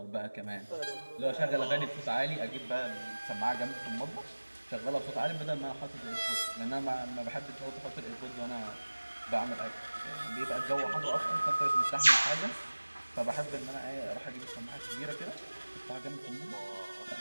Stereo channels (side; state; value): both; inverted; correlation -1.00